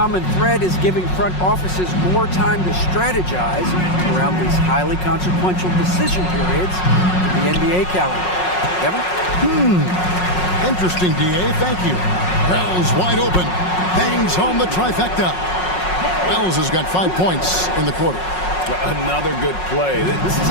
thread is giving front offices more time to strategize around these highly consequential decision periods in the NBA calendar. Kevin? Interesting, D.A. Thank you. Wells wide open. Bangs home the trifecta. Wells has got 5 points in the quarter. Another good play. This is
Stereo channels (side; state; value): right; late; 5.5 ms